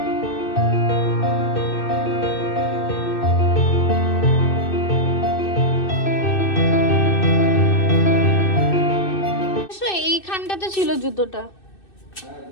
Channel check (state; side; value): late; right; 2.6 ms